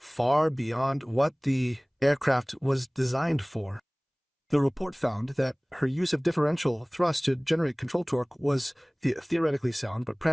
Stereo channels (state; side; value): identical; both; correlation 1.00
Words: beyond what the aircraft was designed for. The report found that her use of differential thrust to generate control torque was theoretically sound but